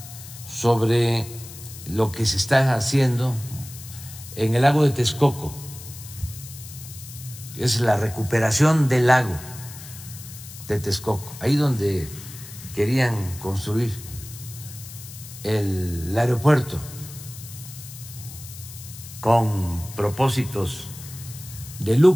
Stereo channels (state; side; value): noise; left; hiss, 15 dB below the sound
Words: sobre lo que se está haciendo en el lago de Texcoco. Es la recuperación del lago de Texcoco, ahí donde querían construir el aeropuerto con propósitos de